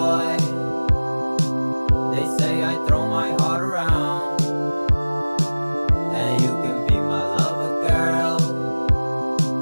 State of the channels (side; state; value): both; inverted; correlation -1.00